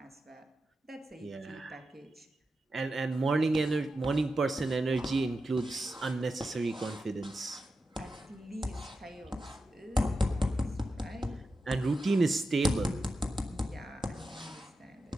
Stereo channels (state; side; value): normal; both; correlation 0.90